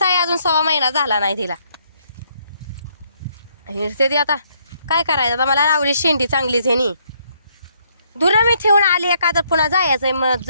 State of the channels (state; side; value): inverted; both; correlation -0.70